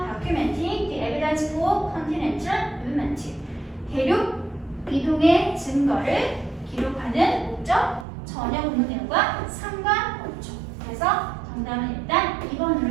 Documenting the evidence for continental movement. 대륙 이동의 증거를 기록하는 목적 전혀 본문 내용과 상관없죠. 그래서 정답은 일단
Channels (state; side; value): drops out; left; at 8.1 s